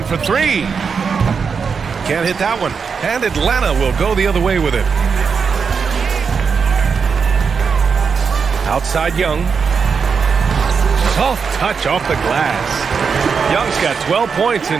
for three. Can't hit that one. And Atlanta will go the other way with it. Outside Young. Soft touch off the glass. Young's got 12 points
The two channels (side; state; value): left; quieter; 5.8 dB